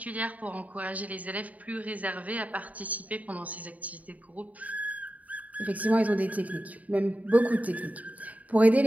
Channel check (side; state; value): left; late; 0.072 ms